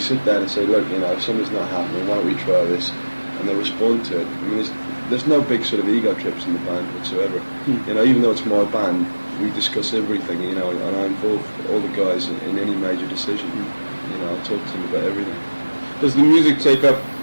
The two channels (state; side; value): inverted; both; correlation -1.00